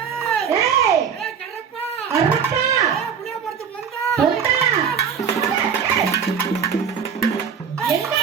ஏய் கரப்பா. கரப்பா. புளிய படுத்து வந்தா. வந்தா. எங்க?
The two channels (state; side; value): quieter; left; 7.1 dB